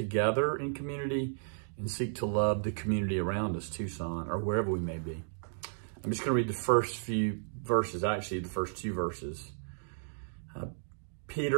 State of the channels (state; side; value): silent; left; digital silence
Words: in community and seek to love the community around us, Tucson, or wherever we may be. I'm just going to read the first few verses, actually the first two verses.